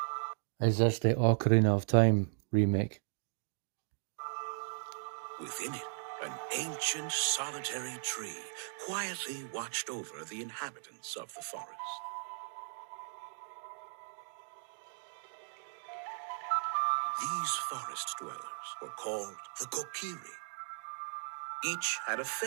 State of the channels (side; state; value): left; silent; digital silence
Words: Is this the Ocarina of Time remake? Within it, an ancient solitary tree quietly watched over the inhabitants of the forest. These forest dwellers were called the Kokiri. Each had a